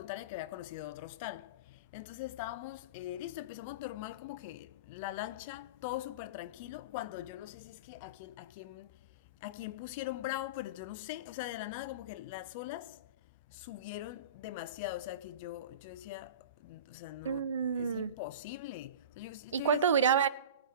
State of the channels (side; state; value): both; inverted; correlation -0.32